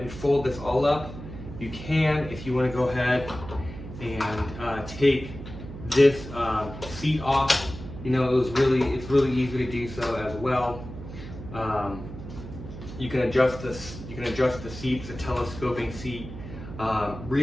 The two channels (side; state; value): right; noise; hum, 12 dB below the sound